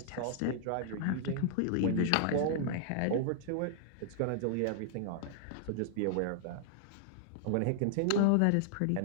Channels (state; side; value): different; both; correlation -0.01